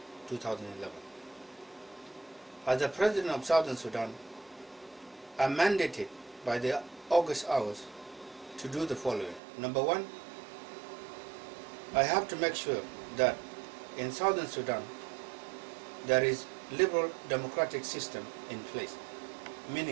2011. As the President of Southern Sudan, I am mandated by the August hours to do the following. Number one, I have to make sure that in Southern Sudan there is liberal democratic system in place,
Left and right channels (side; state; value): left; drops out; at 9.4 s